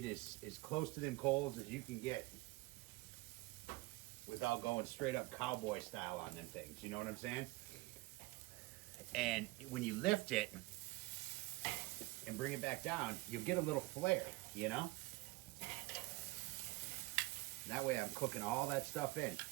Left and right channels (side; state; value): left; quieter; 21.6 dB